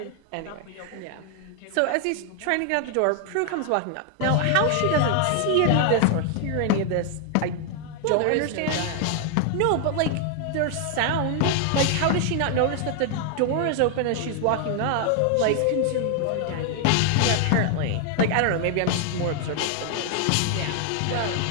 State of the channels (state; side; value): different; both; correlation 0.00